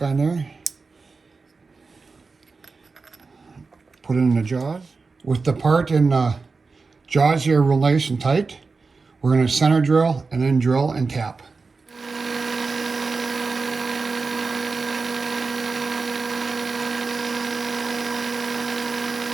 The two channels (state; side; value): quieter; left; 4.3 dB